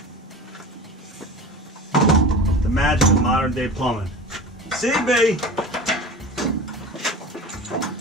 Magic of modern day plumbing. CB!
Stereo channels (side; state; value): both; normal; correlation 0.34